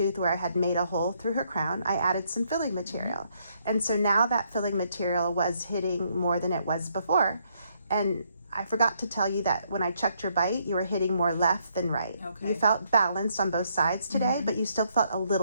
where I had made a hole through her crown, I added some filling material. And so now that filling material was hitting more than it was before. And I forgot to tell you that when I checked your bite, you were hitting more left than right. Okay. You felt balanced on both sides today, but you still felt a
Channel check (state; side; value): inverted; both; correlation -0.72